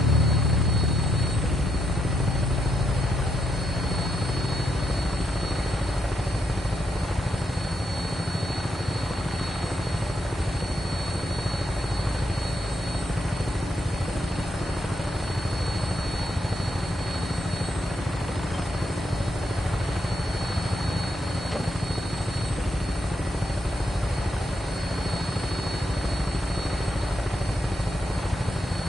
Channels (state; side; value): normal; both; correlation 0.80